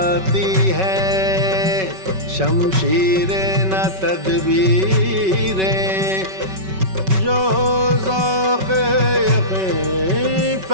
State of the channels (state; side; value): late; left; 5.3 ms